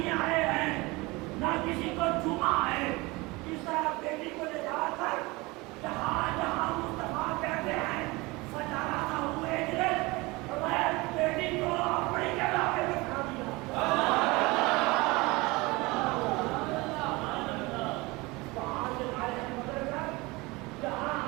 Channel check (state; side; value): quieter; left; 23.4 dB